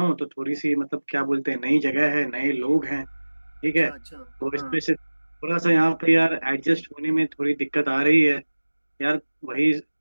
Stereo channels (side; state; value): both; inverted; correlation -1.00